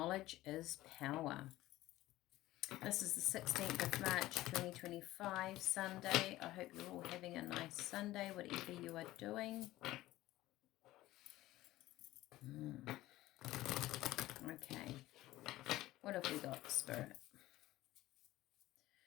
is power. This is the 16th of March 2025, Sunday. I hope you're all having a nice Sunday, whatever you are doing. Okay. What have we got, Spirit?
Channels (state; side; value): quieter; right; 16.4 dB